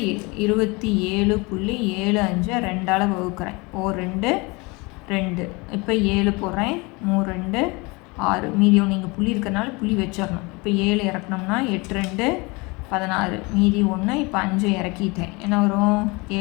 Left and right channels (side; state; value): right; quieter; 26.5 dB